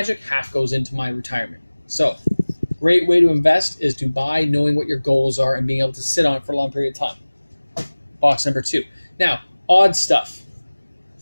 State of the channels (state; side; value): inverted; both; correlation -1.00